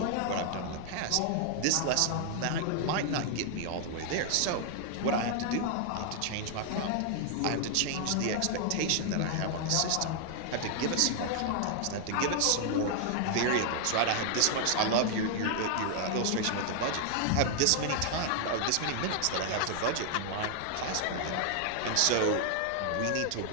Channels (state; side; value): different; both; correlation 0.00